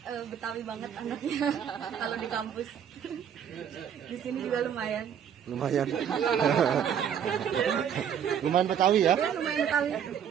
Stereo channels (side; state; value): left; quieter; 8.6 dB